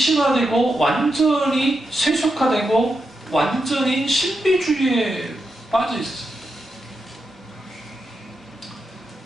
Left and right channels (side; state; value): both; normal; correlation 0.86